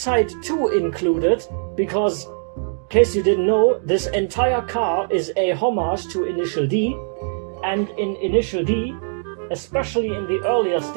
to include it, because, in case you didn't know, this entire car is a homage to Initial D, and in Initial D, especially in the earlier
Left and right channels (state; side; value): silent; left; digital silence